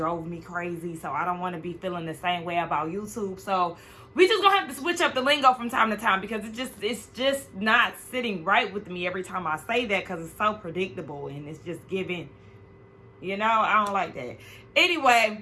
me crazy. So I don't want to be feeling the same way about YouTube. So we just gonna have to switch up the lingo from time to time because it's just not sitting right with me every time I say that because it's so predictable and it's just giving, you know, I don't like that.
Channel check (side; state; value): both; identical; correlation 1.00